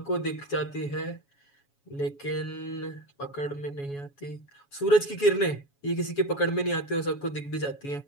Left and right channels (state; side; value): late; right; 7.1 ms